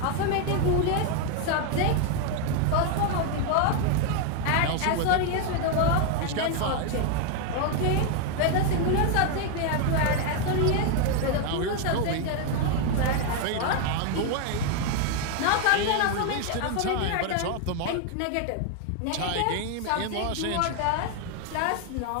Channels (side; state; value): both; different; correlation 0.01